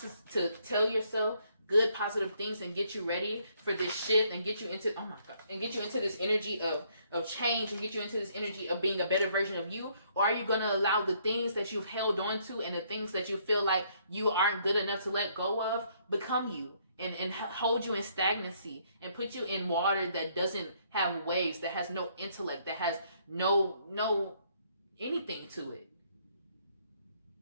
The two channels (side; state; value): both; inverted; correlation -0.68